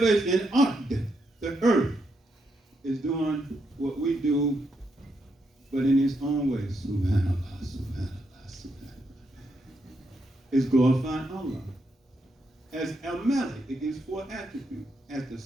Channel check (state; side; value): normal; both; correlation 0.80